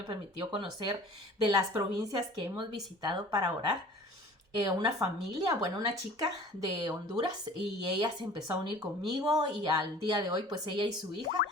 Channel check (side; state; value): both; normal; correlation 0.45